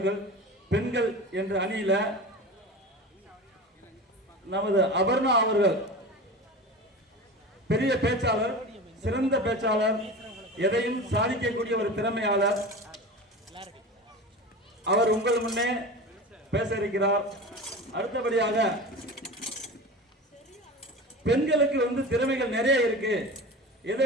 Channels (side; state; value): both; normal; correlation 0.31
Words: பெண்கள் என்ற அணியில நமது அபர்ணா அவர்கள் பெரிய பேச்சாளர், சிறந்த பேச்சாளர், எதையும் சாதிக்கக்கூடிய ஒரு திறமையாளர். அவர் உங்கள் முன்னே பேச இருக்கிறார். அடுத்தபடியாக பெண்களுக்கு திறமைகள் நிறைய இருக்கு, எதை